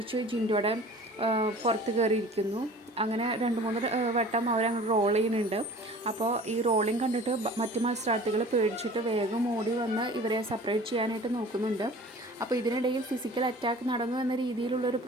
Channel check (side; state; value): both; normal; correlation 0.44